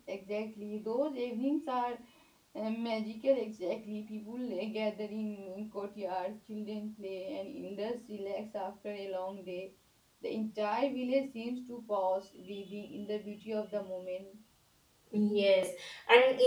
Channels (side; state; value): both; identical; correlation 1.00